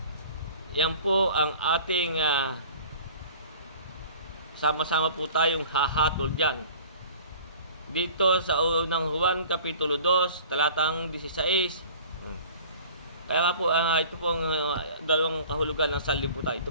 Yan po ang ating sama-sama po tayong hahatol dyan. Dito sa unang Juan, Kapitulo 2, talatang 16. Kaya nga po, ito pong dalawang kahulugan ng sanlibutan.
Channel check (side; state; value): both; inverted; correlation -0.45